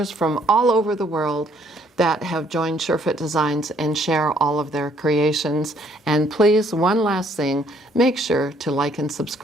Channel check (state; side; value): normal; both; correlation 0.65